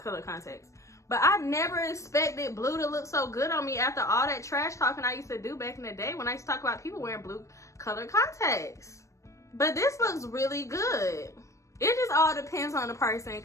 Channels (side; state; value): right; late; 0.15 ms